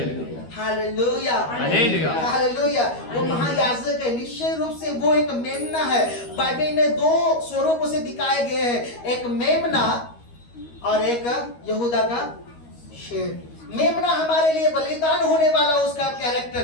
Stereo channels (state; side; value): late; right; 13 ms